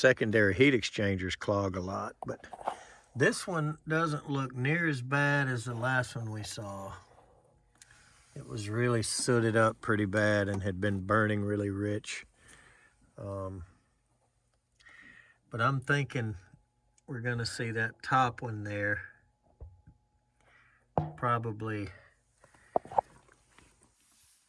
heat exchangers clog a lot. But this one doesn't look near as bad as the last one we saw. It was really sooted up pretty bad and had been burning really rich. But I'm thinking we're gonna see that top one there probably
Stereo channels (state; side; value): identical; both; correlation 1.00